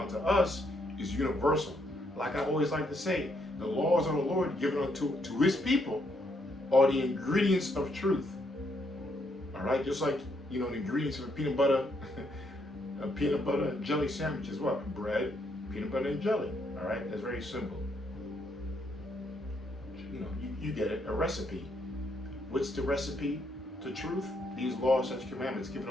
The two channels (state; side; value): normal; both; correlation 0.74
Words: us is universal. Like I always like to say, the laws of the Lord given unto his people are the ingredients of truth. All right, just like, you know, the ingredients of a peanut butter, a peanut butter and jelly sandwich is what? Bread, peanut butter, and jelly. All right, that's very simple. You know, you get it, a recipe. What's the recipe to truth? These laws, such commandments given